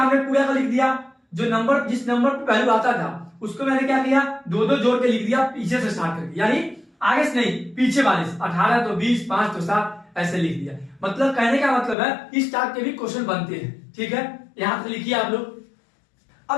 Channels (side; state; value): right; drops out; at 12.0 s